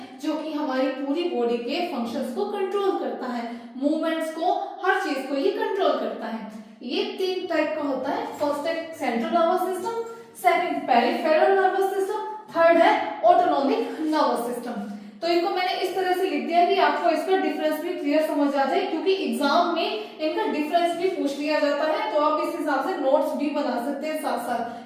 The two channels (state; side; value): identical; both; correlation 1.00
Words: जो कि हमारी पूरी बॉडी के फंक्शंस को कंट्रोल करता है, मूवमेंट्स को, हर चीज को ये कंट्रोल करता है। ये 3 टाइप का होता है। फर्स्ट है central nervous system, second peripheral nervous system, third है ऑटोनॉमिक नर्वस सिस्टम। तो इनको मैंने इस तरह से लिख दिया कि आपको इसका डिफरेंस भी क्लियर समझ आ जाए, क्योंकि एग्जाम में इनका डिफरेंस भी पूछ लिया जाता है। तो आप इस हिसाब से नोट्स भी बना सकते हैं साथ साथ,